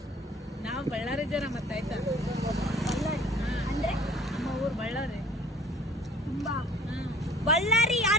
ನಾವು ಬಳ್ಳಾರಿ ಜನ ಮತ್ತೆ ಆಯ್ತಾ ಅಂದ್ರೆ ನಮ್ಮ ಊರು ಬಳ್ಳಾರಿ ತುಂಬಾ ಬಳ್ಳಾರಿ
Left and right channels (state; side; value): normal; both; correlation 0.51